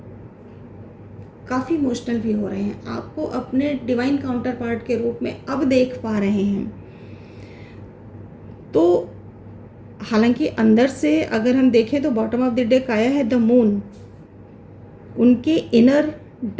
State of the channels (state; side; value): identical; both; correlation 1.00